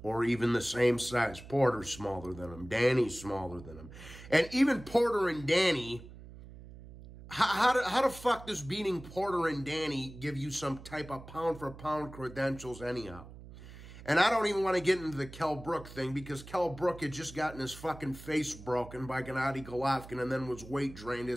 or even the same size. Porter's smaller than him. Danny's smaller than him. And even Porter and Danny, how the fuck does beating Porter and Danny give you some type of pound-for-pound credentials anyhow? And I don't even want to get into the Kell Brook thing, because Kell Brook had just gotten his fucking face broken by Gennady Golovkin and then was weight drained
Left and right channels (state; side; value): noise; right; hum, 16 dB below the sound